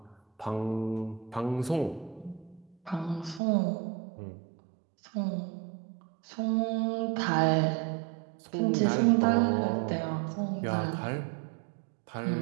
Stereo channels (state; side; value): drops out; left; at 3.4 s